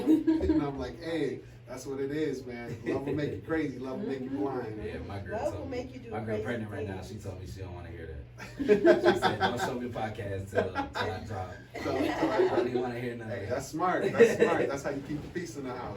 And I'm like, hey, that's what it is, man. Love will make you crazy. Love will make you blind. Yeah, my girl Love told will me. make you do My girl crazy pregnant right now. things. She told me she don't want to hear that. She said, don't show me the podcast till I drop. I don't even want to hear none of Hey, that. that's smart. That's smart. That's how you keep the peace in the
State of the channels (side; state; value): both; identical; correlation 1.00